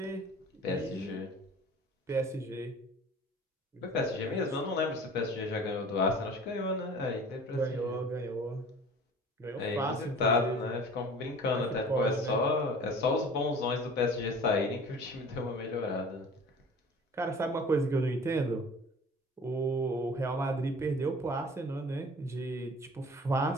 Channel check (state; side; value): normal; both; correlation 0.44